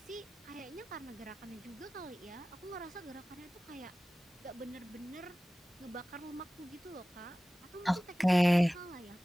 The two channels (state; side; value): normal; both; correlation 0.97